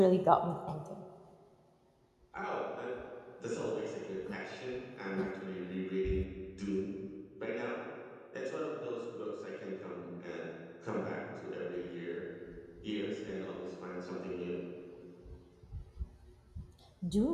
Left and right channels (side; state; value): both; identical; correlation 1.00